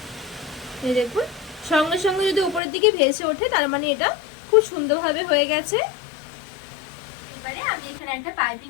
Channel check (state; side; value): drops out; right; at 2.6 s